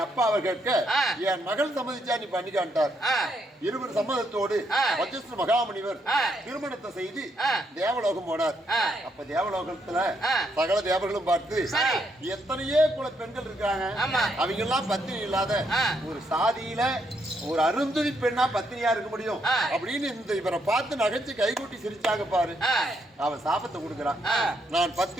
அப்பாவை கேட்க என் மகள் சம்மதிச்சா நீ பண்ணிக்கான்ட்டார். இருவர் சம்மதத்தோடு வஜிஸ்டர் மகாமுனிவர் திருமணத்தை செய்து தேவலோகம் போனார். அப்ப தேவலோகத்துல சகல தேவர்களும் பார்த்து எத்தனையோ குல பெண்கள் இருக்காங்க அவங்க எல்லாம் பத்தினி இல்லாத ஒரு சாதியில ஒரு அருந்ததி பெண்ணா பத்தினியா இருக்க முடியும் அப்படின்னு இந்த இவரை பார்த்து நகைச்சு கைகூட்டி சிரிச்சாங்க பாரு. அவன் சாபத்தை கொடுக்கிறான். நான்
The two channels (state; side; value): normal; both; correlation 0.76